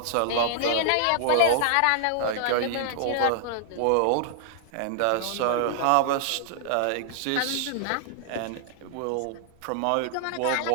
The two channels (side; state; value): both; different; correlation -0.01